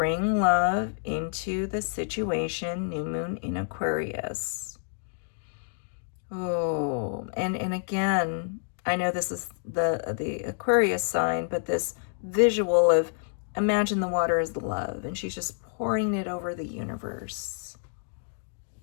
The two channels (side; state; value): right; silent; digital silence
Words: love into the situation. New moon in Aquarius. Oh, and again, I know this is the Aquarius sign, but this visual of imagine the water as the love, and she's just pouring it over the universe,